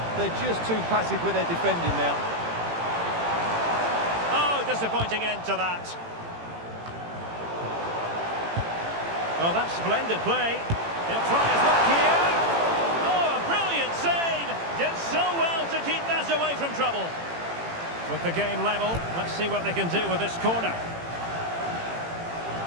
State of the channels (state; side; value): late; left; 18 ms